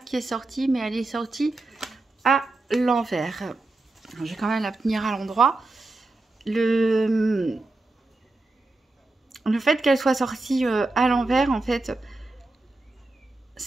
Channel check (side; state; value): left; quieter; 3.1 dB